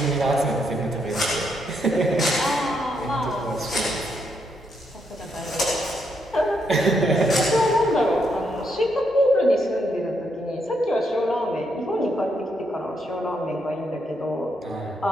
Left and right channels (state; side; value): normal; both; correlation 0.78